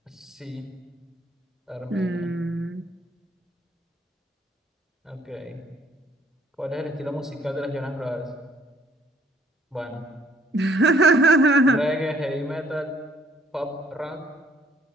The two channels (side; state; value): both; normal; correlation 0.63